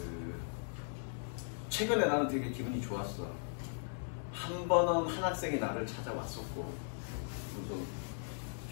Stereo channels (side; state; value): right; silent; digital silence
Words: 최근에 나는 되게 기분이 좋았어. 한 번은 한 학생이 나를 찾아왔었고, 그래서